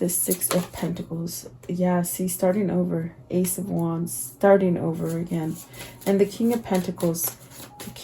Six of Pentacles? Yeah, see, starting over. Ace of Wands, starting over again. And the King of Pentacles. The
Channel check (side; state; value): both; identical; correlation 1.00